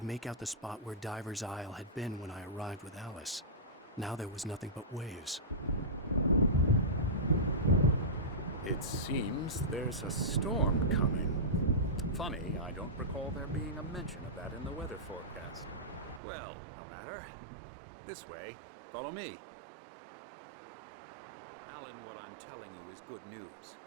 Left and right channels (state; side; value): drops out; left; at 16.2 s